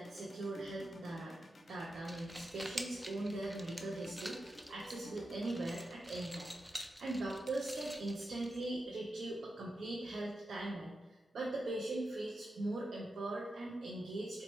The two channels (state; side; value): normal; both; correlation 0.89